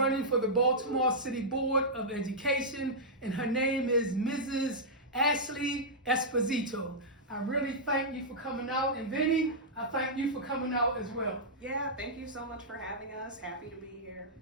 for the Baltimore City Board of Education. And her name is Mrs. Ashley Esposito. I really thank you for coming out, and Vinny, I thank you for coming out as well. Yeah, thank you so much for having us. Happy to be here.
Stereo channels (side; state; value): both; normal; correlation -0.10